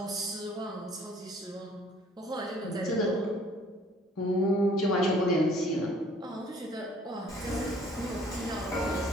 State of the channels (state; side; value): normal; both; correlation 0.56